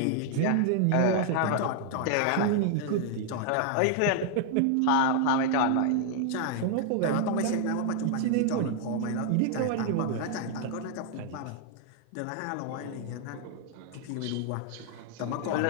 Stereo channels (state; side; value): different; both; correlation 0.00